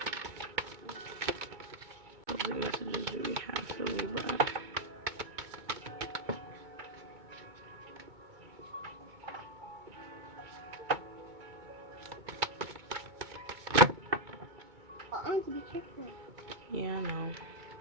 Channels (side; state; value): left; late; 2.2 ms